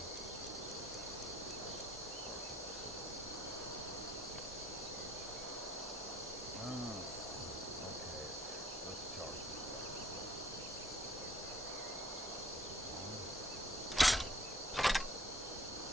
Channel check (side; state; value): both; normal; correlation 0.60